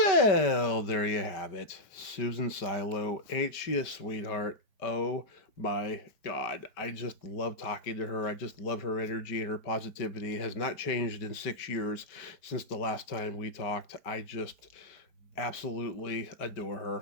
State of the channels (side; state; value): right; late; 5.2 ms